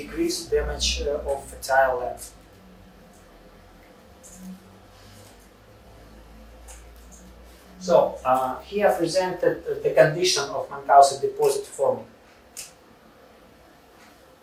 damage of fertile land. So here presented the condition of Munchausen deposit forming.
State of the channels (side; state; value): both; identical; correlation 1.00